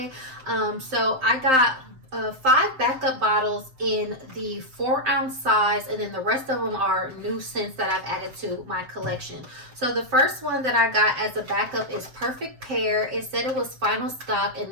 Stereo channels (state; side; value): late; left; 7.7 ms